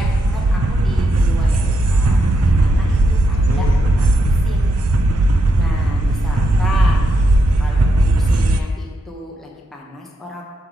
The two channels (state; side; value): normal; both; correlation 0.83